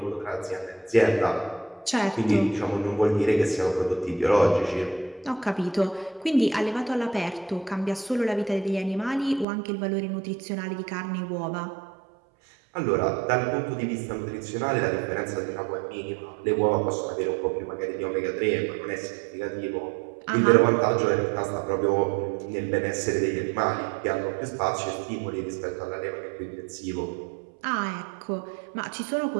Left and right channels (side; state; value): left; drops out; at 9.5 s